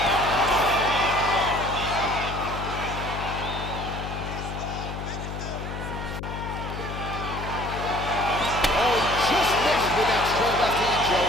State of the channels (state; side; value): noise; left; hum, 7 dB below the sound